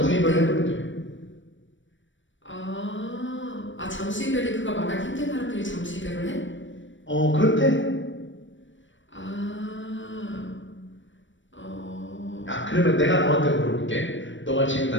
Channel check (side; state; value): right; late; 0.55 ms